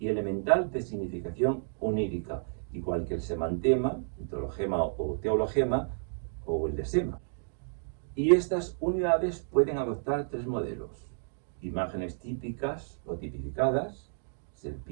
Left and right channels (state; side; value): silent; left; digital silence